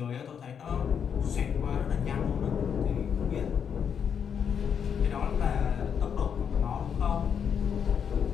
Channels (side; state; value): right; quieter; 7.5 dB